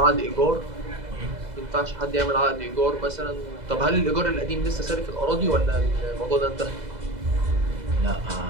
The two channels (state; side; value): late; left; 2.0 ms